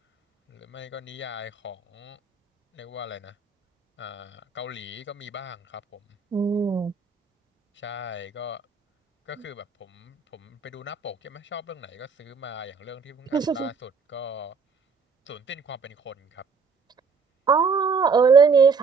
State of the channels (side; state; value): left; quieter; 5.1 dB